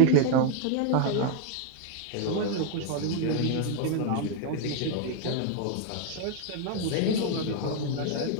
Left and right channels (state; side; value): different; both; correlation 0.00